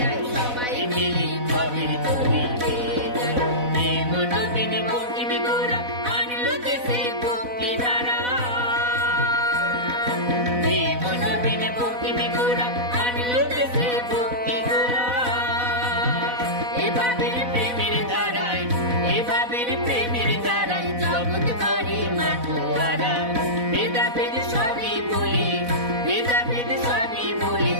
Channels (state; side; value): late; left; 4.1 ms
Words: আই সবাই মিলে কবির তরি গেয়ে যায়। নবীন বঙ্কিম গোরা আনলো দেশে ভক্তি ধারা, নবীন বঙ্কিম গোরা আনলো দেশে ভক্তি ধারা। এভাবের প্রেমের ধারায়, এভাবের প্রেমের ধারায় জগৎ করে মাতোয়ারা। ভেদাভেদ সবই বলি, ভেদাভেদ সবই বলি,